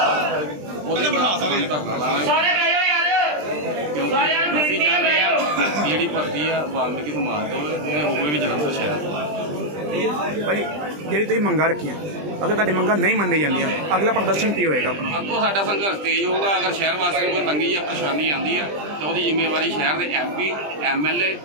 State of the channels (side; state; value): left; late; 20 ms